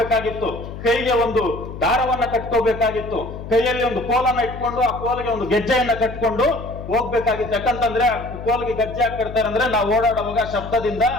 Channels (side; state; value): left; noise; hum, 11 dB below the sound